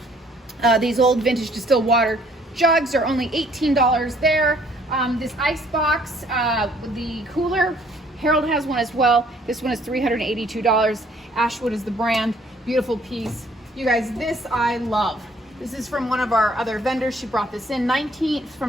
These old vintage distilled water jugs are only $18 there. This ice box with the cooler, Harold has one as well. This one is $382. Ashwood is the brand. Beautiful piece. You guys, this I love. This is from one of our other vendors. She brought this in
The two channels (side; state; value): both; normal; correlation 0.61